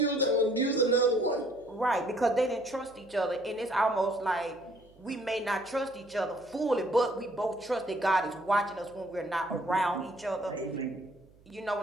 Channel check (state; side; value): noise; right; hum, 28 dB below the sound